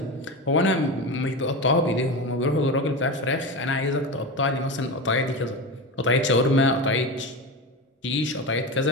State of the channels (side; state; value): both; normal; correlation 0.22